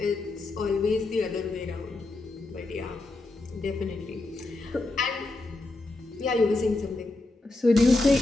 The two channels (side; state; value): right; quieter; 3.0 dB